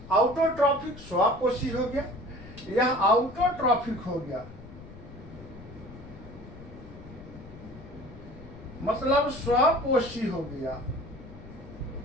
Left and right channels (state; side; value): noise; left; rumble, 16 dB below the sound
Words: आउटोट्रॉफिक स्वपोषी हो गया, यह आउटोट्रॉफिक हो गया, मतलब स्वपोषी हो गया।